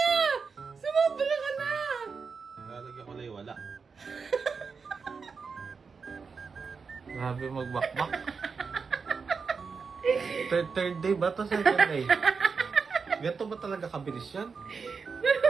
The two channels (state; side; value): quieter; left; 5.2 dB